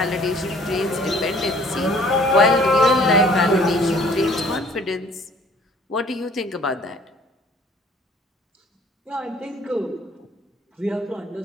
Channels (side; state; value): both; normal; correlation 0.55